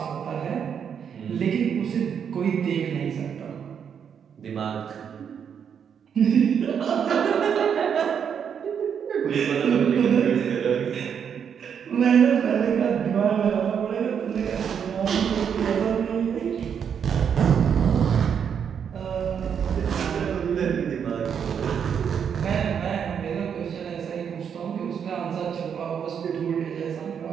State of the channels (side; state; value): left; quieter; 7.6 dB